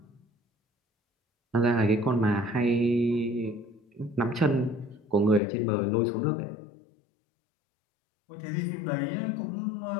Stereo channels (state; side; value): drops out; right; at 5.4 s